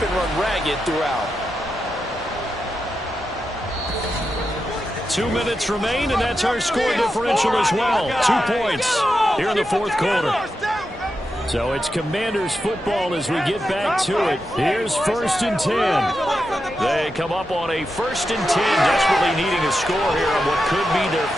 been run ragged throughout. 2 minutes remain, and that's our score differential as well. 2 points here in the 4th quarter. So it's Commanders football as we get back to it. Here's 1st and 10. They come up on a 1st and 10, desperately needing a score here on what could be their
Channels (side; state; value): both; normal; correlation 0.88